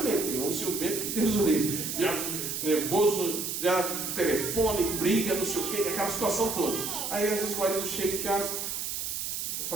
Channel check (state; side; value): noise; right; hiss, 3 dB below the sound